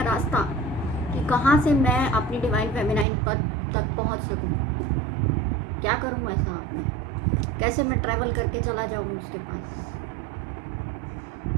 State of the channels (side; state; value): left; drops out; at 3.1 s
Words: रास्ता कि कहाँ से मैं अपनी डिवाइन फेमिनाइन पद तक पहुँच सकूँ, क्या करूँ ऐसा आपने, कैसे मैं ट्रैवल करके चला जाऊँ उसके पास।